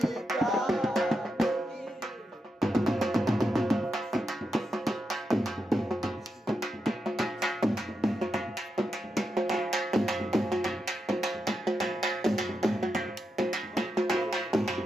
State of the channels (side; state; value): both; normal; correlation 0.87